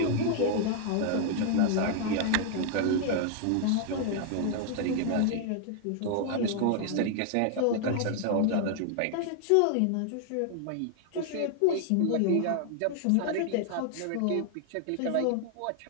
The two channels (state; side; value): different; both; correlation 0.00